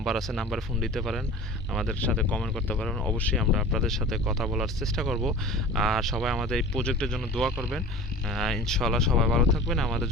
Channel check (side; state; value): both; normal; correlation 0.39